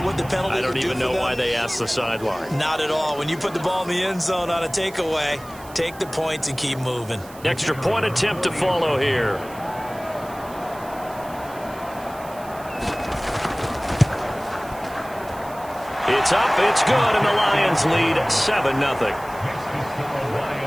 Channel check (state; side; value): noise; right; hiss, 20 dB below the sound